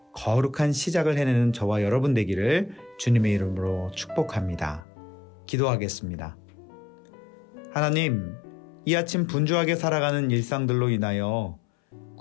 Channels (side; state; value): right; drops out; at 4.9 s